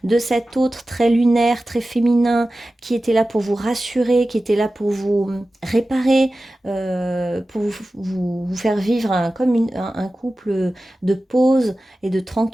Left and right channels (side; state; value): both; normal; correlation 0.95